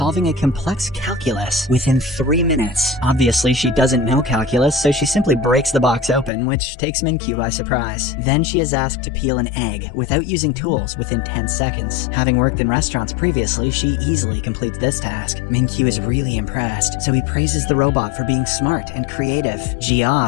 a complex calculus within 3 minutes. Obviously, she doesn't know calculus, so she simply breaks the box open, which takes Min-kyu by surprise. Then she is asked to peel an egg without using tools within 10 seconds. Having worked in restaurants previously, she easily completes this task. Min-kyu is really impressed, so he praises the robot for being smart and creative.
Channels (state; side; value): drops out; right; at 6.3 s